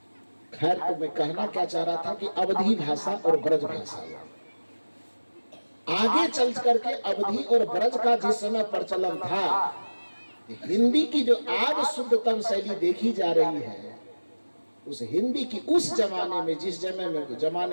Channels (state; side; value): inverted; both; correlation -1.00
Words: खैर, तो मैं कहना क्या चाह रहा था कि अवधी भाषा और ब्रज भाषा आगे चल करके अवधी और ब्रज का जिस समय प्रचलन था, हिंदी की जो आज शुद्धतम शैली देखी जा रही है, उस हिंदी की उस जमाने में, जिस